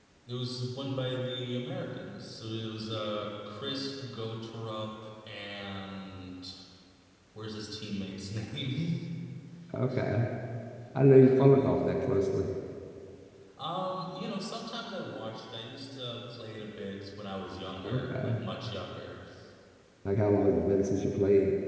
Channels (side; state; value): both; identical; correlation 1.00